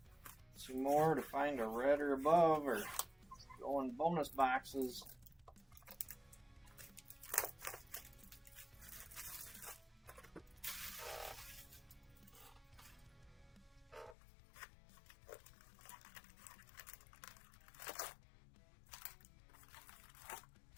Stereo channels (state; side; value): drops out; right; at 14.2 s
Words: Two more to find a red or above, or go in bonus boxes.